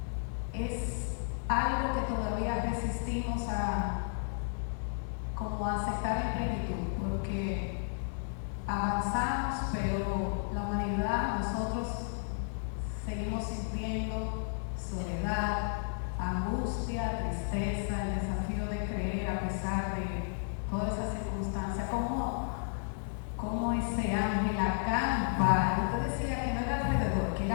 es algo que todavía resistimos como a aceptar en plenitud, porque avanzamos, pero la humanidad, nosotros seguimos sintiendo soledad, angustia, tristeza, el desafío de creer a pesar de todas esas circunstancias. ¿Cómo ese ángel acampa? Usted decía que no era alrededor, que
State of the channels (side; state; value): right; silent; 56 dB below the other